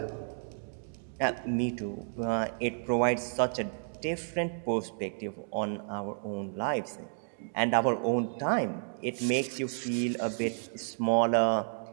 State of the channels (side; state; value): left; silent; digital silence